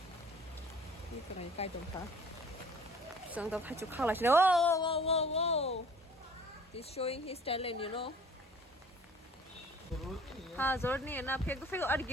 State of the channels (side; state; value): both; normal; correlation 0.50